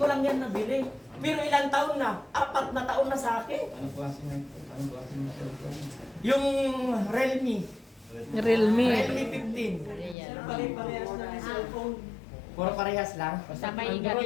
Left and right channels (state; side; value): drops out; right; at 10.2 s